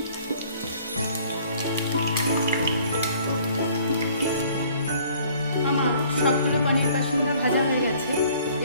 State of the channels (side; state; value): both; inverted; correlation -0.56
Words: আমার সবগুলো পনির পাসিন্দা ভাজা হয়ে গেছে।